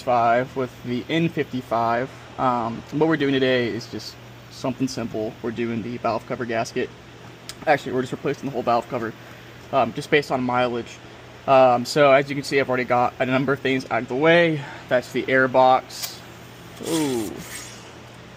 with the N55. What we're doing today is just something simple. We're doing the valve cover gasket. Actually, we're just replacing the whole valve cover, just based on mileage. So as you can see, I've already got a number of things out of the way. That's the air box. Ooh,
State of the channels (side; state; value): both; identical; correlation 1.00